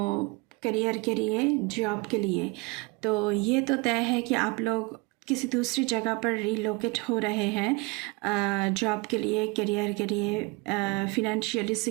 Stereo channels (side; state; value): left; quieter; 26.7 dB